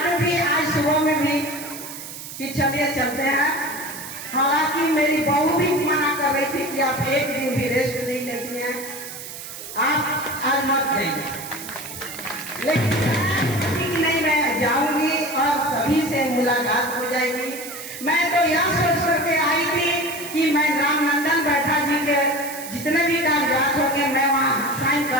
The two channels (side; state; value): right; noise; hiss, 11 dB below the sound